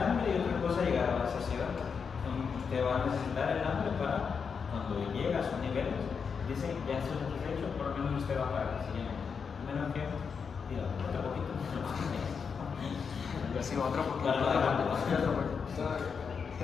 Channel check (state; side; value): quieter; right; 6.0 dB